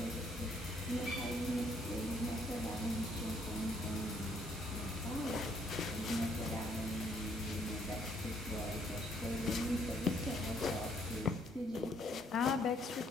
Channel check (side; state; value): both; normal; correlation 0.67